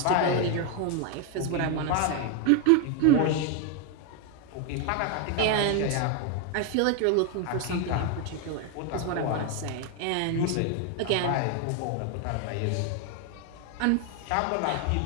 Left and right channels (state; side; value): different; both; correlation 0.01